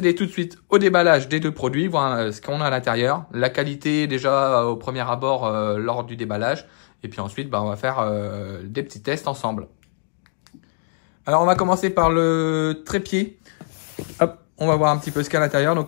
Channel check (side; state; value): right; silent; digital silence